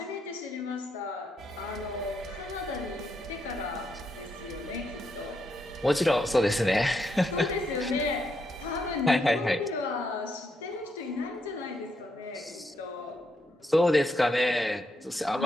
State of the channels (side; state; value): both; normal; correlation 0.79